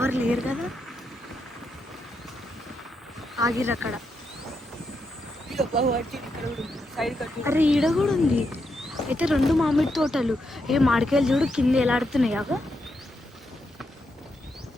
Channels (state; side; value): normal; both; correlation 0.82